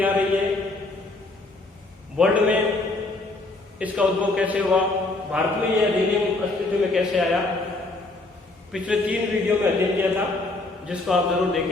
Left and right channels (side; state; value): right; quieter; 3.0 dB